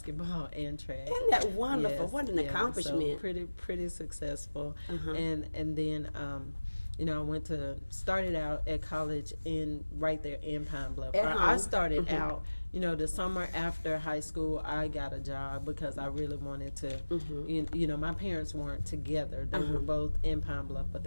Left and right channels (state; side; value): inverted; both; correlation -1.00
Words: and track. Isn't that wonderful? Yes, what an accomplishment. So pretty successful. And then I started out at college right there in Pine Bluff. I started out, the summer after high school, I got a job because I really wanted to, my parents weren't together. They were both in Pine Bluff, but